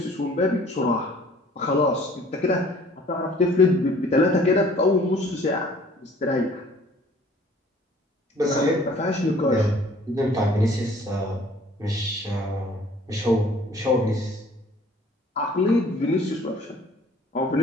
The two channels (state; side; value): normal; both; correlation 0.54